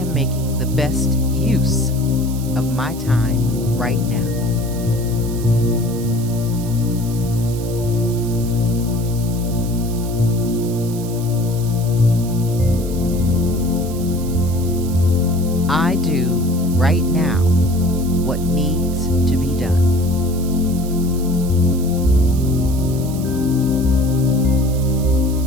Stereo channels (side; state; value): right; noise; hiss, 15 dB below the sound